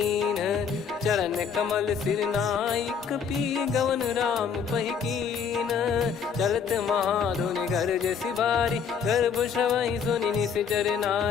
चरण कमल सिर नाई, कपि गवन राम पहि कीन, चलत महाधुनि गर्ज सिबारी, गर्भ श्रवहि सुनि निश्चर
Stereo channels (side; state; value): right; quieter; 6.7 dB